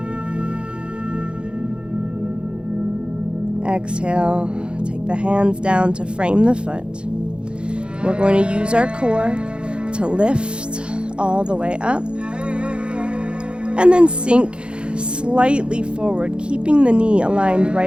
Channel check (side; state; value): left; late; 0.055 ms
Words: Exhale, take the hands down to frame the foot. We're going to use our core to lift all the way up and then sink slightly forward, keeping the knee aligned